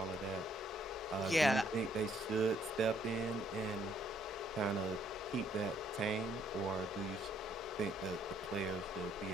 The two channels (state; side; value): normal; both; correlation 0.68